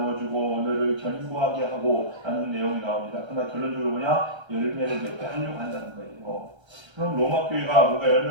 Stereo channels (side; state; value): left; late; 1.3 ms